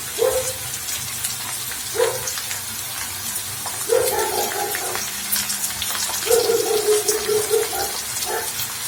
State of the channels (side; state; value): both; identical; correlation 1.00